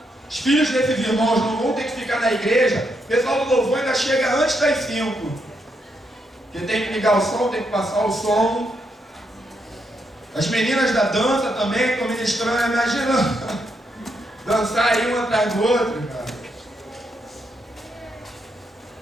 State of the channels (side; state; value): both; normal; correlation 0.79